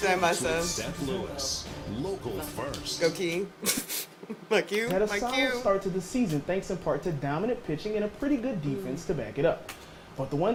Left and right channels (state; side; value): identical; both; correlation 1.00